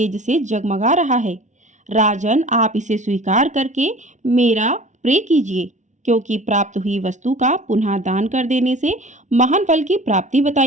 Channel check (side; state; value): left; late; 0.35 ms